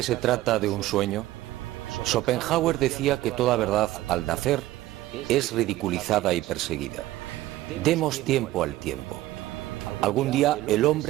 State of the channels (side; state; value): left; quieter; 15.9 dB